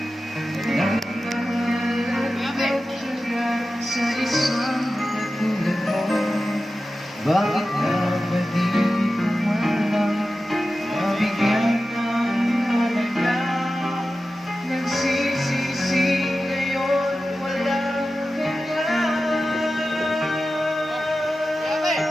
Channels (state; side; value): normal; both; correlation 0.93